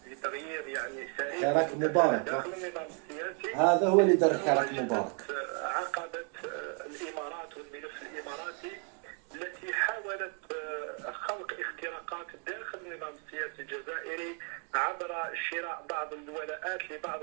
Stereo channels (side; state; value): left; quieter; 37.5 dB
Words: بتغيير يعني سريع حراك مبارك داخل النظام السياسي، هذا هو اللي دار حراك مبارك. عقبت الإمارات والملف الإماراتي التي حاولت خلق اختراقات داخل النظام السياسي الجزائري عبر شراء بعض الولاءات لبعض